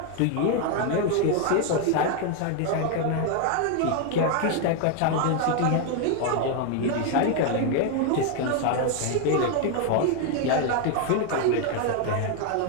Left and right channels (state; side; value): different; both; correlation 0.01